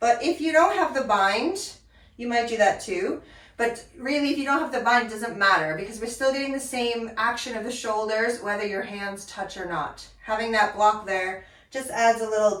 if you don't have the bind, you might do that too. But really, if you don't have the bind, it doesn't matter because we're still getting the same action of the shoulders, whether your hands touch or not. Having that block there just adds a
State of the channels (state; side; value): identical; both; correlation 1.00